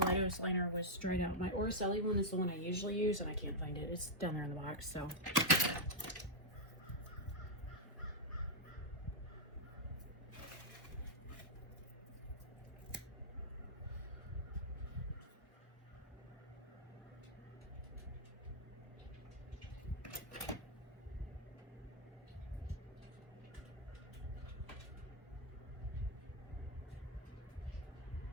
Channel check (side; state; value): both; normal; correlation -0.04